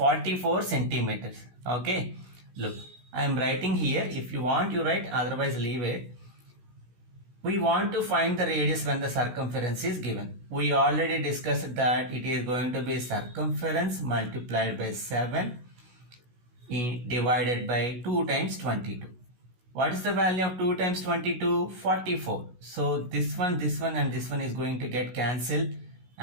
centimeters. Okay, look, I am writing here. If you want, you write, otherwise leave it. We want to find the radius when the circumference is given. We already discussed that it is going to be circumference multiplied by 7 divided by 2 times 22. What is the value of 2 times 22? 44. So this one and this one is going to get cancelled,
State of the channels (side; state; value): left; late; 16 ms